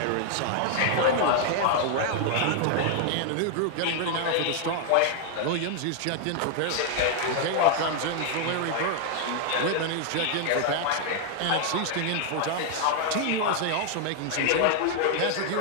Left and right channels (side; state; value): both; different; correlation 0.00